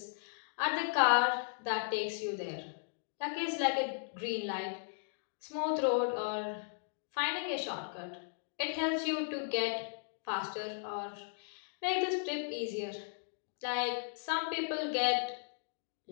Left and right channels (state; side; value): silent; right; digital silence